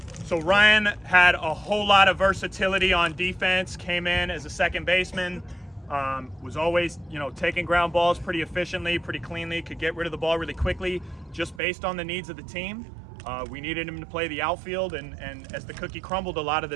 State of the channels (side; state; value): left; drops out; at 11.6 s